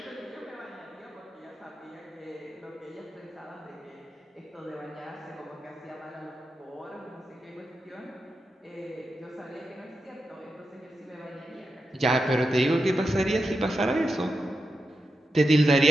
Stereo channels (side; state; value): both; normal; correlation 0.88